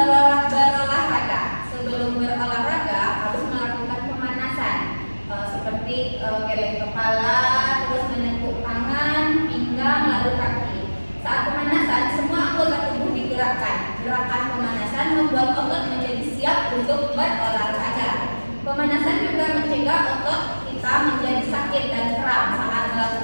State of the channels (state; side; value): inverted; both; correlation -1.00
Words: Sebelum berolahraga harus melakukan pemanasan seperti geleng kepala, terus menekuk tangan, pinggang, lalu kaki. Saat pemanasan semua anggota tubuh digerakkan. Gerakan pemanasan membuat otot menjadi siap untuk berolahraga. Pemanasan juga mencegah otot kita menjadi sakit dan kram saat